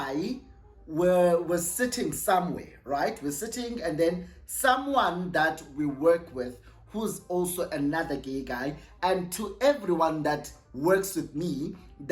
were sitting somewhere, right? We're sitting, and then someone that we work with who's also another gay guy, and to everyone that works with me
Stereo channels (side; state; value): both; identical; correlation 1.00